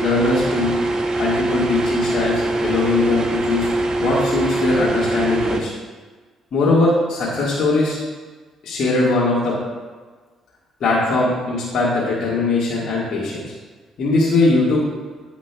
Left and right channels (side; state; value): both; normal; correlation 0.66